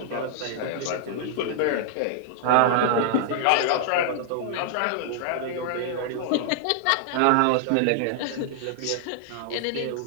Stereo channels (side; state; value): both; different; correlation -0.01